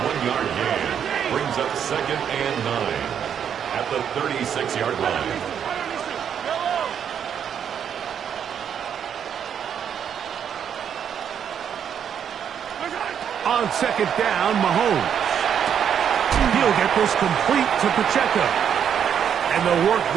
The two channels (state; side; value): quieter; left; 8.4 dB